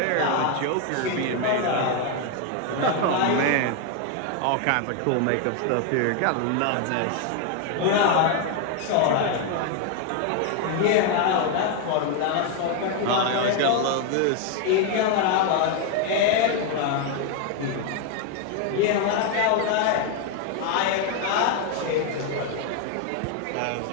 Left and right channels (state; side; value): different; both; correlation 0.01